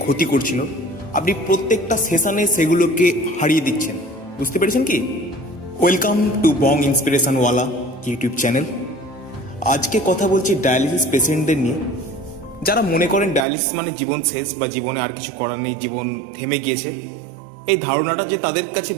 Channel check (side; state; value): left; drops out; at 13.5 s